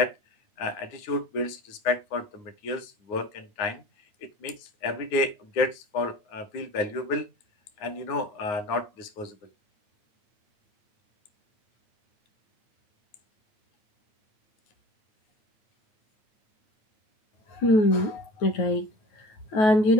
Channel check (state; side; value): late; right; 9.6 ms